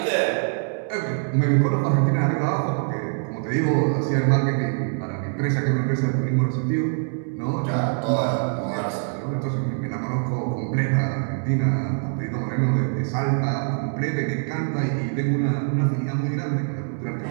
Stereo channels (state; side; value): silent; left; 63 dB below the other